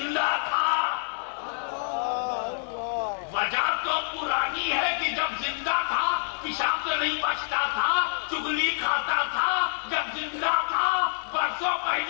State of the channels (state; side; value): silent; right; digital silence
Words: تھا وجہ تو پرانی ہے کہ جب زندہ تھا پیشاب سے نہیں بچتا تھا, چغلی کھاتا تھا. جب زندہ تھا برسوں